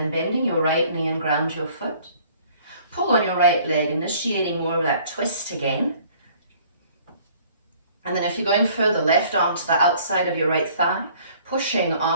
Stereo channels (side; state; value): both; inverted; correlation -0.56